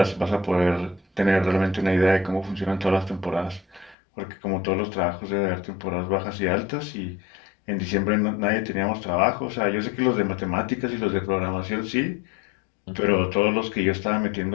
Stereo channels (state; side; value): drops out; right; at 4.0 s